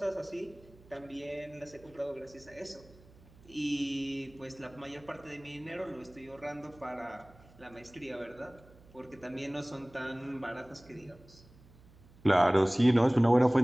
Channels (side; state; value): right; noise; hum, 24 dB below the sound